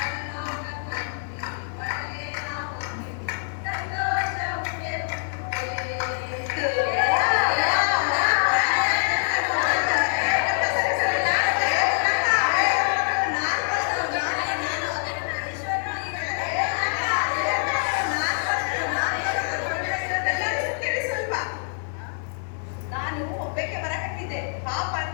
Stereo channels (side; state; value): right; silent; 62 dB below the other